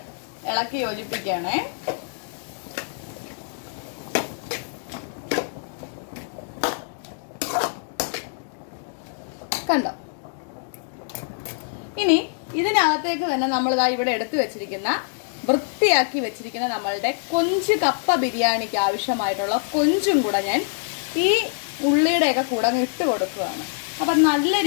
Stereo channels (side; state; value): right; silent; digital silence